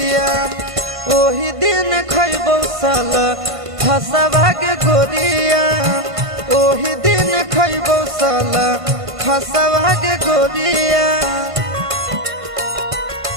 ओही दिन खैबौ सल फसवा के गोरिया ओही दिन खैबौ सल फसवा के गोरिया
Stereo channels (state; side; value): late; left; 1.5 ms